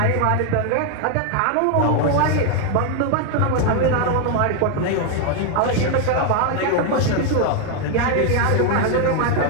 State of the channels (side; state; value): both; different; correlation 0.01